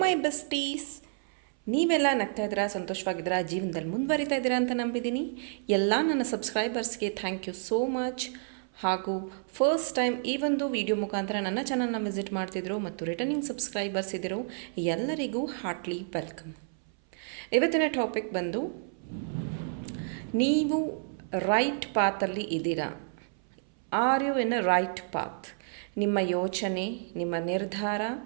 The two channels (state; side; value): silent; left; 58 dB below the other